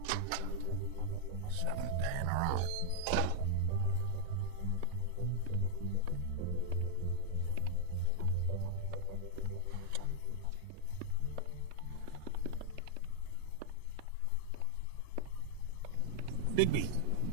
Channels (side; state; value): both; different; correlation 0.00